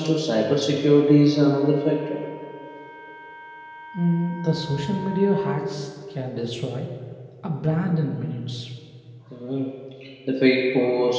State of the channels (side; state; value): both; identical; correlation 1.00